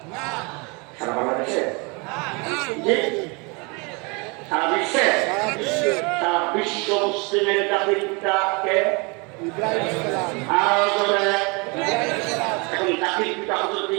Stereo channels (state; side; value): quieter; left; 29.9 dB